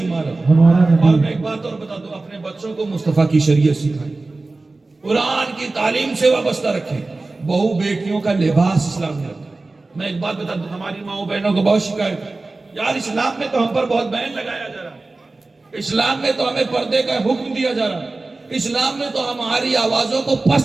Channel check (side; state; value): left; quieter; 3.3 dB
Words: ہمارا اور نبی، میں ایک بات اور بتا دوں، اپنے بچوں کو مصطفیٰ کی شریعت سکھائیں، قرآن کی تعلیم سے وابستہ رکھیں، بہو بیٹیوں کا لباس اسلام نے رکھا۔ میں ایک بات بتا دوں، ہماری ماؤں بہنوں کو بہت شکایت ہے، یار اسلام میں تو ہم پر بہت بین لگایا جا رہا ہے، اسلام میں تو ہمیں پردے کا حکم دیا جا رہا ہے، اسلام میں تو ہماری آوازوں کو